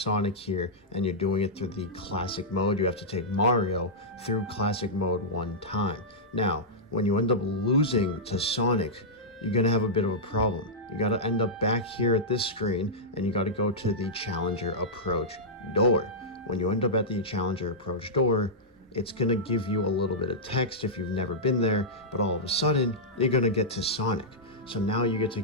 here and you're doing it through the classic mode, you have to take Mario through classic mode one time. Now, when you end up losing to Sonic, you're going to have a bit of a problem. You got to end up back here at this screen and you got to go to the Challenger Approach door. When you end up at the Challenger Approach door, it's going to give you a little bit of text if you've never been there, but all of a sudden, you're going to get to Sonic. So now you get to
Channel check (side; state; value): both; normal; correlation -0.11